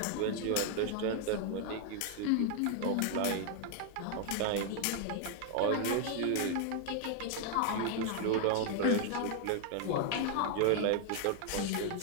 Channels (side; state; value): both; different; correlation 0.00